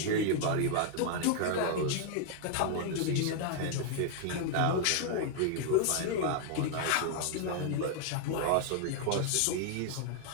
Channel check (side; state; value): both; different; correlation 0.00